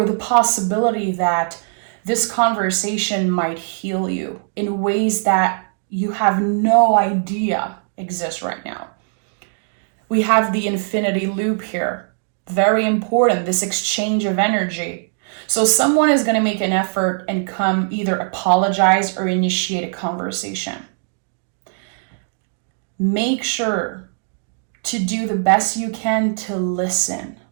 the possibility that this conversation might heal you in ways that you have no idea exist right now. We have the infinity loop here. Very important, this exchange of energy. So someone is going to make an effort and come either apologize or initiate a conversation. Make sure to do the best you can to listen.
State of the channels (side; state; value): left; silent; digital silence